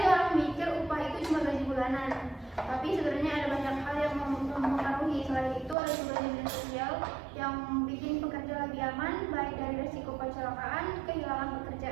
orang mikir upah itu cuma gaji bulanan, tapi sebenarnya ada banyak hal yang mempengaruhi. Selain itu ada juga jaminan sosial yang bikin pekerja lebih aman, baik dari resiko kecelakaan, kehilangan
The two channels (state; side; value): drops out; left; at 5.8 s